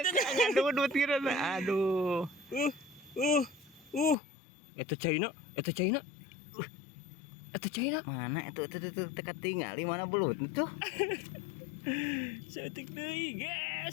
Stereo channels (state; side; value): drops out; right; at 4.2 s